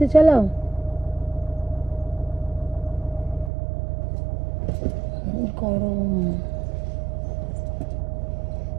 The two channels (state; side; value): drops out; left; at 3.5 s